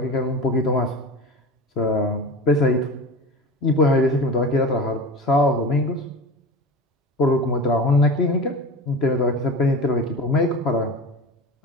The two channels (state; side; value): normal; both; correlation 0.32